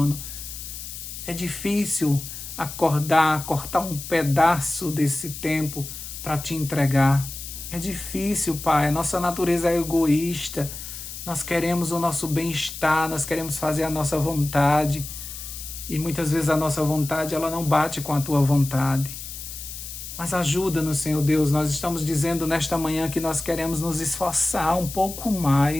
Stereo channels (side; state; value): left; noise; hiss, 10 dB below the sound